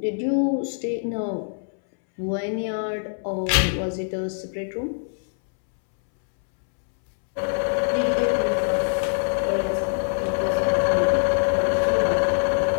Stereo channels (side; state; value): right; silent; 63 dB below the other